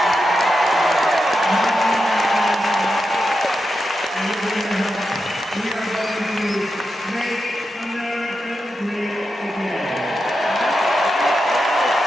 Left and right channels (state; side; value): normal; both; correlation 0.88